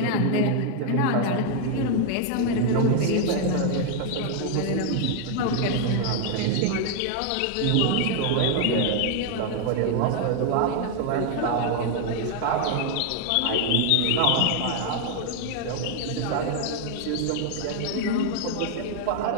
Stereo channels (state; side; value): different; both; correlation 0.00